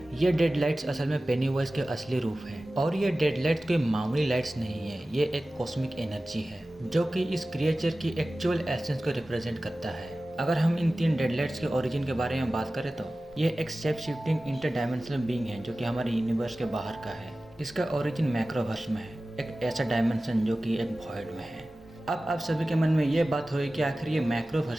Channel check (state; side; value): normal; both; correlation 0.96